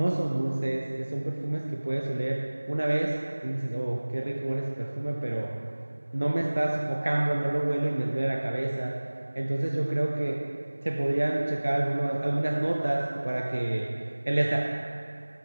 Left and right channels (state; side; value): inverted; both; correlation -1.00